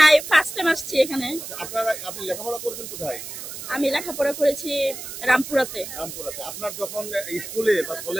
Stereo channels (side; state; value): right; noise; hiss, 9 dB below the sound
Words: না, ফার্স্ট টাইম আসছি এখানে। আপনি লেখাপড়া করেছেন কোথায়? আমি লেখাপড়া করেছি রামপুরাতে। আপনার যখন স্কুলে বা